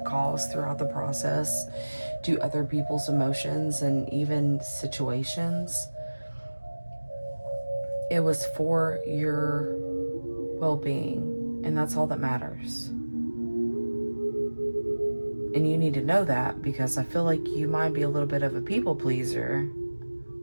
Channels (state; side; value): inverted; both; correlation -1.00